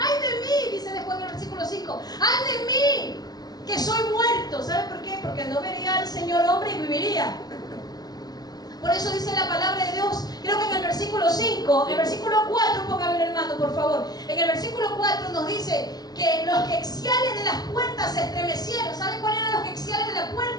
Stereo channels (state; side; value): late; right; 0.19 ms